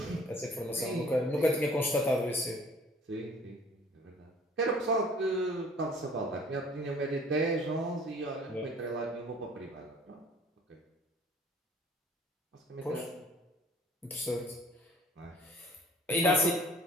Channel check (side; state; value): both; normal; correlation 0.53